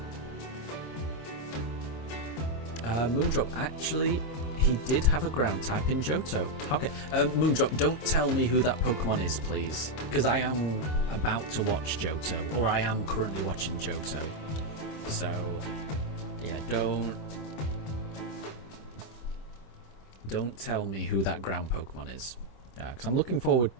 Moondrop, actually, he did have a ground type in Johto. Okay, Moondrop, don't tell me who that Pokemon is, please. Because I am about to watch Johto, or I am currently watching Johto. So, yeah, don't tell me who that ground Pokemon is. Yeah, because I'm looking forward,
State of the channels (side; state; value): right; late; 26 ms